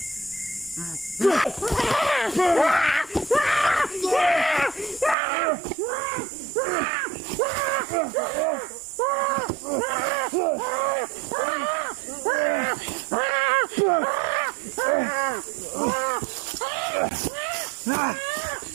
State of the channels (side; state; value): left; drops out; at 5.2 s